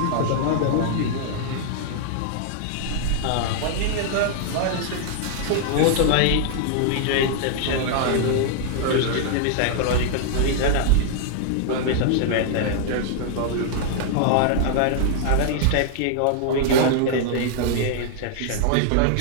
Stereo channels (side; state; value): both; different; correlation -0.01